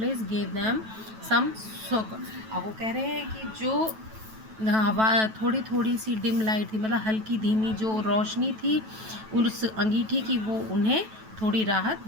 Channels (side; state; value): left; late; 9.2 ms